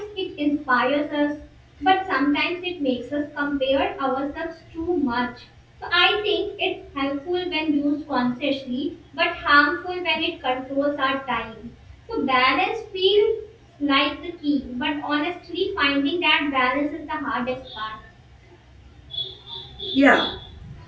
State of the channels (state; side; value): identical; both; correlation 1.00